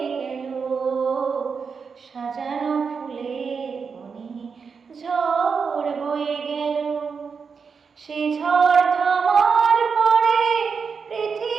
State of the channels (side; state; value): left; quieter; 5.6 dB